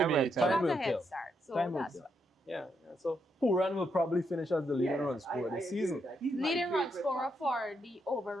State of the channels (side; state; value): both; normal; correlation 0.79